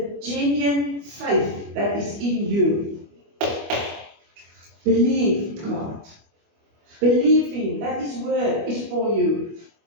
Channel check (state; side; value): late; left; 25 ms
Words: genuine faith that is in you. Believe God. Believe Him, that His word is for you.